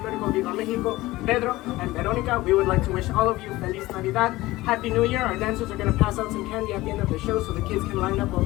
Viva Mexico, Pedro and Veronica, we would like to wish all of you Feliz Navidad, Happy New Year. Our dancers are going to pass out some candy at the end of the show so the kids can line up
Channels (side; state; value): right; quieter; 18.5 dB